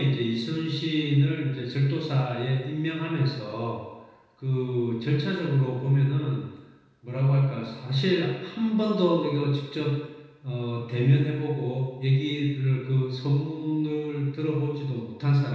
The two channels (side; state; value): both; identical; correlation 1.00